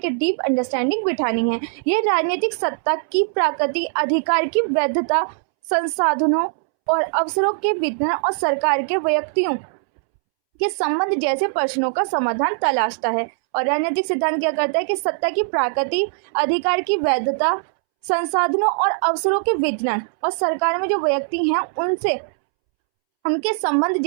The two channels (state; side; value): silent; left; 65 dB below the other